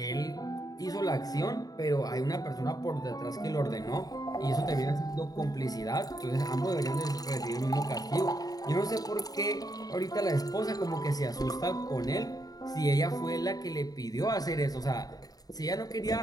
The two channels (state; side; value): late; right; 0.18 ms